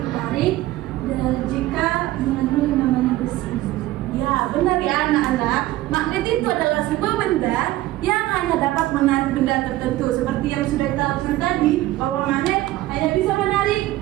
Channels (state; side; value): quieter; left; 16.2 dB